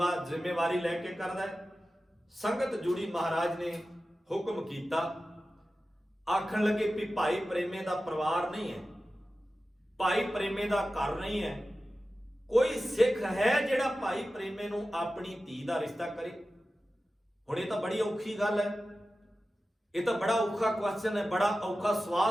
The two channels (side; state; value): both; normal; correlation 0.94